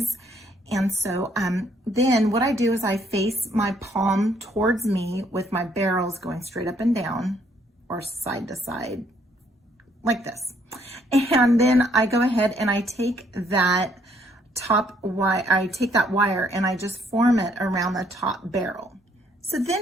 And so then what I do is I face my palm towards me with my barrels going straight up and down or side to side like this. And then I go ahead and I take that wire and I just form it around the top barrel. So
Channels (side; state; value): both; normal; correlation 0.68